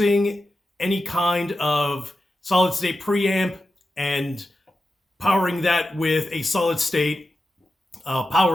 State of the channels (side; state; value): both; normal; correlation 0.90